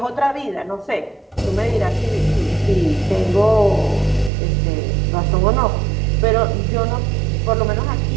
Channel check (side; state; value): left; drops out; at 4.3 s